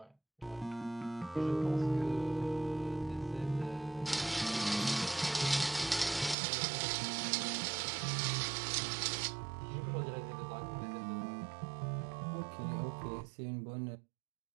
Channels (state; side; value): drops out; left; at 6.4 s